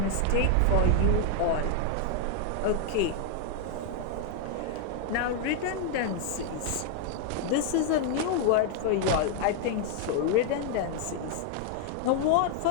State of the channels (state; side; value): different; both; correlation 0.00